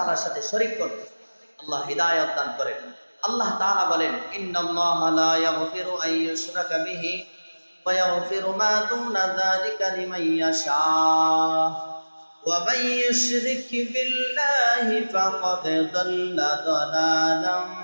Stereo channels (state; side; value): inverted; both; correlation -1.00